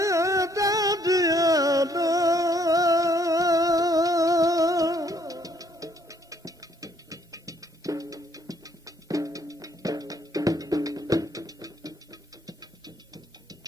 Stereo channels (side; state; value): both; normal; correlation 0.66